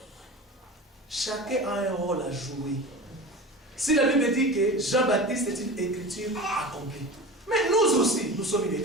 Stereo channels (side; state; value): both; normal; correlation 0.32